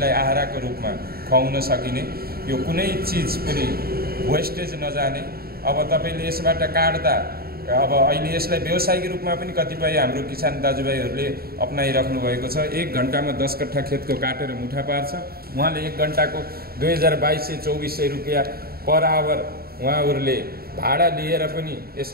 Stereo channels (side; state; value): left; late; 0.44 ms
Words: आहाराको रूपमा खुवाउन सकिने, यो कुनै चिज पनि वेस्टेज नजाने। अब तपाईँले यसबाट काट्दा अब अहिले यसलाई व्यावसायिक रूपमा पनि कतिपय हाम्रो किसान दाजुभाइहरूले अपनाइराख्नु भएको छ। 1 घण्टामा 10 कट्ठा खेतको काटेर मुठा पार्छ। उहाँले 1 घण्टाको 2200-2400 रुपियाँ पर आवर उहाँहरूले भाडा लिएर पनि